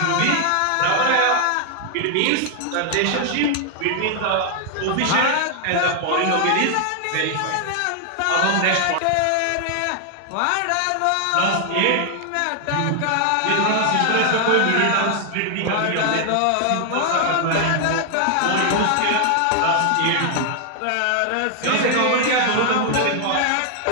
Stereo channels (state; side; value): different; both; correlation 0.00